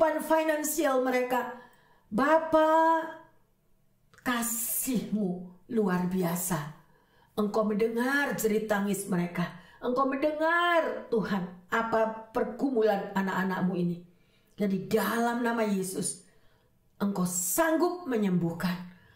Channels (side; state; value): both; identical; correlation 1.00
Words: finansial mereka. Bapa, kasih-Mu luar biasa. Engkau mendengar jerit tangis mereka. Engkau mendengar Tuhan apa pergumulan anak-anak-Mu ini. Dan di dalam nama Yesus, Engkau sanggup menyembuhkan,